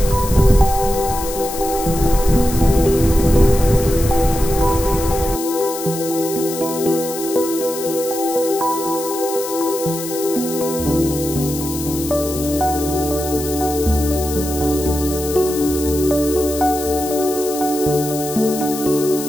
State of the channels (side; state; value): left; noise; hiss, 9 dB below the sound